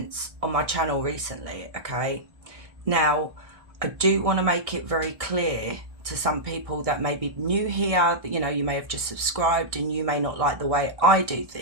on my channel recently, okay? Now, I do want to make it very clear to some people that may be new here, that, you know, you may have just subscribed and you may not like the way I do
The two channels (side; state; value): left; late; 1.6 ms